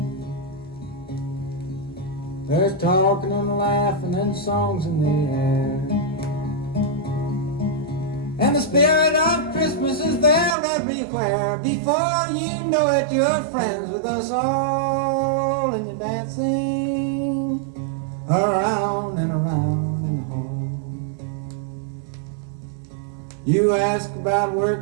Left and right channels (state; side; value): drops out; left; at 10.6 s